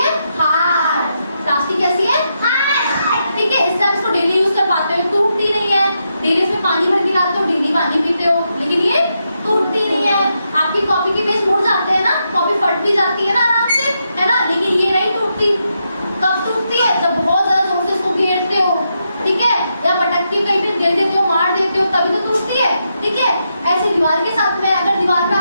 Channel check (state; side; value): inverted; both; correlation -0.83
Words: हार्ड। प्लास्टिक कैसी है? हार्ड, ठीक है। इससे आप इसको डेली यूज कर पाते हो, टूटती नहीं है। डेली इसमें पानी भर के लाते हो, डेली पानी पीते हो, लेकिन ये टूटती नहीं है। आपकी कॉपी के पेज मुड़ जाते हैं ना, कॉपी फट भी जाती है ना आराम से, है ना, लेकिन ये नहीं टूटती। कब टूटती है? जब बहुत ज्यादा जोर से इसको घेरते हो, ठीक है, या पटक के कहीं पे दे देते हो, मार देते हो, तभी तो टूटती है, ठीक है। ऐसी दीवार के साथ में, अगर दीवार पे